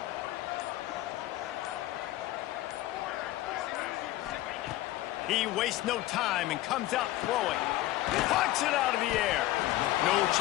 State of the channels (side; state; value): right; quieter; 15.8 dB